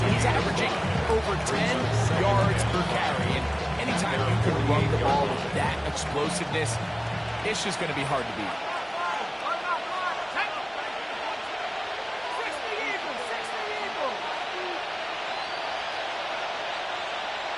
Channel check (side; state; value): both; identical; correlation 1.00